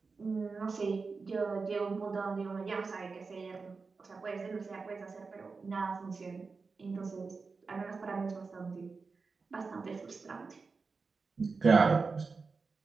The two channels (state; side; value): quieter; left; 4.5 dB